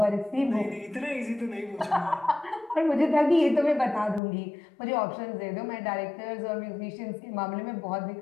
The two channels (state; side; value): drops out; right; at 4.2 s